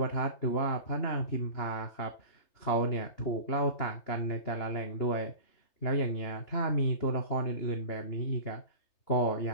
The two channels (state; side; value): late; right; 3.3 ms